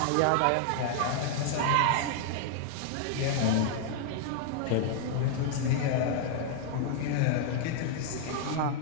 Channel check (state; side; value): different; both; correlation -0.01